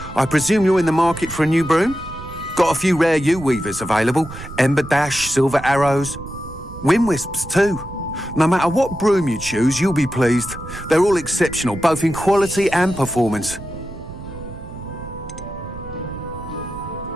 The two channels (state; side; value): noise; right; rumble, 13 dB below the sound